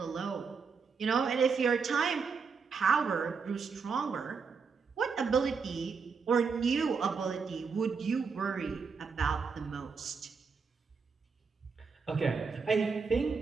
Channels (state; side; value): quieter; left; 5.4 dB